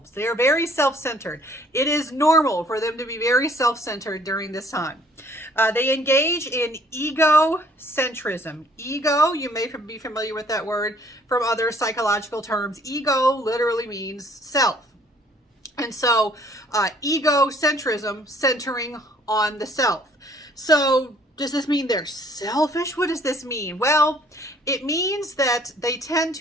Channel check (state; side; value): normal; both; correlation 0.59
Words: They are very self-centered. It is normal for them to be very self-centered during this time. They engage in egocentrism. Ego, you may be familiar with that word from other psychological terms. Ego literally means self. And so egocentrism, centering on the self. So does this mean they're selfish? What does this mean? Well, it means that they tend